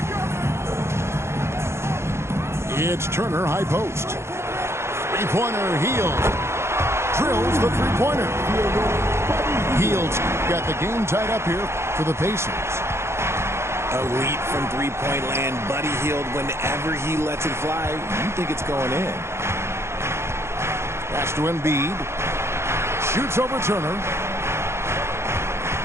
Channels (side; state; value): left; late; 0.13 ms